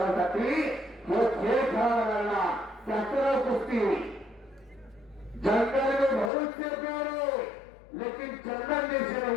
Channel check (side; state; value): right; drops out; at 6.3 s